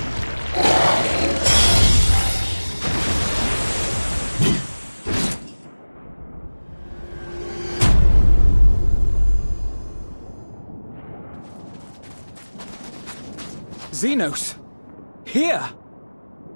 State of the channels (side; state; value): both; inverted; correlation -1.00